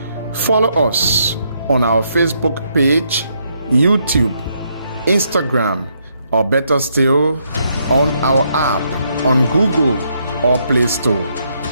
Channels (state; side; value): inverted; both; correlation -0.76